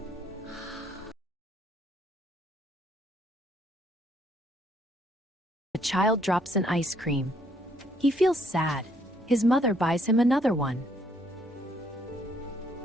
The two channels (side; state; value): both; normal; correlation 0.69